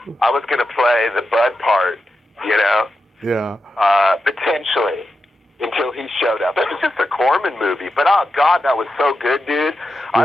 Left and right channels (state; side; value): normal; both; correlation 0.88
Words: was going to play the Bud part, Yeah. Potentially, until he showed up. It was just a Corman movie, but oh God, that was so good, dude. I